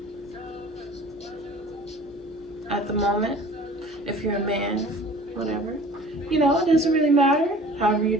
at the moment. If you're a man, whatever. You know, it doesn't really matter. However you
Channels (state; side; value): normal; both; correlation 0.46